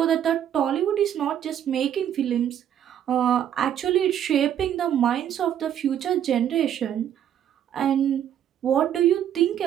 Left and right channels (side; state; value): left; quieter; 10.1 dB